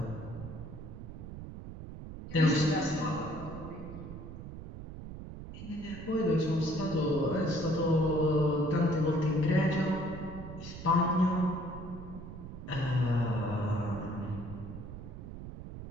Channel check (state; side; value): noise; right; rumble, 11 dB below the sound